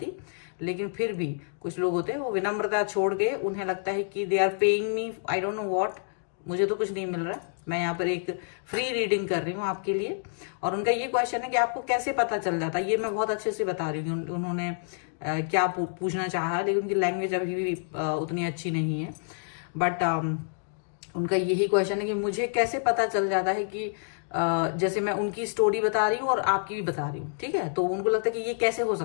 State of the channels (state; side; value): silent; right; digital silence